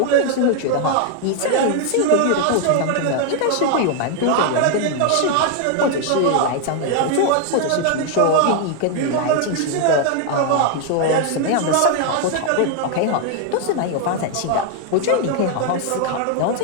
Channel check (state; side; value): different; both; correlation 0.00